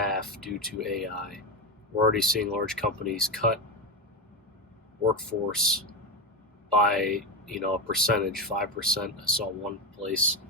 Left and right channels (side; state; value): both; normal; correlation 0.14